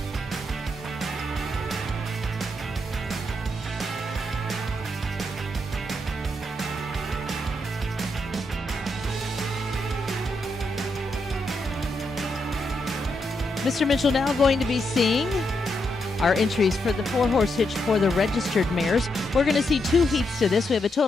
Mr. Mitchell now going to be seeing our entries for the 4-horse hitch for the registered mares. We're going to see 2 heats to this. We have a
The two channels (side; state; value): both; normal; correlation 0.81